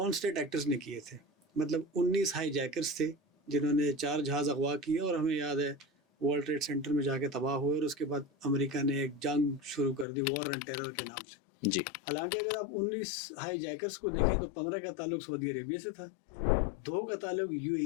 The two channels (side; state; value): right; drops out; at 10.1 s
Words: स्टेट एक्टर्स ने किए थे। मतलब 19 हाई जैकर्स थे जिन्होंने 4 जहाज़ अगवा किए और हमें याद है वर्ल्ड ट्रेड सेंटर में जाके तबाह हुए और उसके बाद अमेरिका ने एक जंग शुरू कर दी वॉर ऑन टेरर के नाम से। जी, हालांकि अगर आप 19 हाई जैकर्स को देखें तो 15 का ताल्लुक सऊदी अरेबिया से था, 2 का ताल्लुक